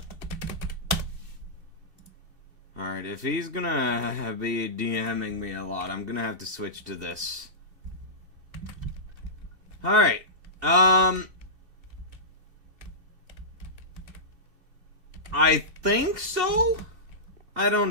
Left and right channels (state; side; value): late; left; 2.7 ms